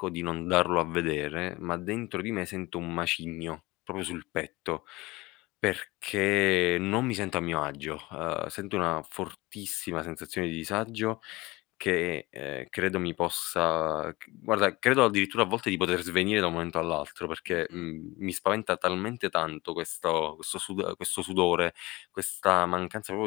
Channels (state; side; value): quieter; right; 21.4 dB